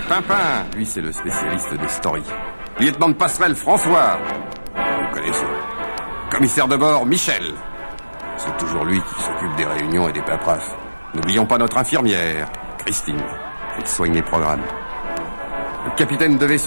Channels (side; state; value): both; inverted; correlation -1.00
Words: Pimpin. Lui, c'est le spécialiste des stories. Lieutenant de passerelle François. Vous connaissez. Commissaire de bord Michel. C'est toujours lui qui s'occupe des réunions et des paperasses. N'oublions pas notre infirmière, Christine. Elle soigne les programmes. Le capitaine de